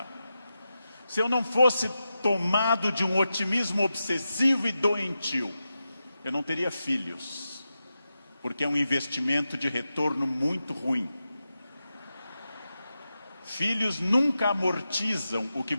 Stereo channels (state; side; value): inverted; both; correlation -0.90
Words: Se eu não fosse tomado de um otimismo obsessivo e doentio, eu não teria filhos, porque é um investimento de retorno muito ruim. Filhos nunca amortizam o que